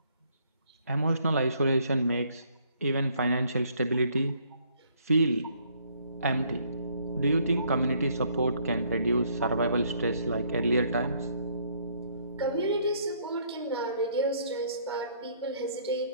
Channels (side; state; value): both; inverted; correlation -0.65